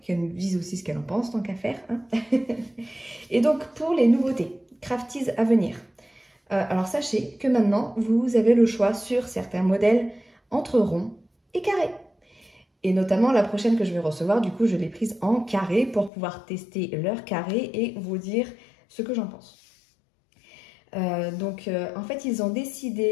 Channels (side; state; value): right; drops out; at 16.1 s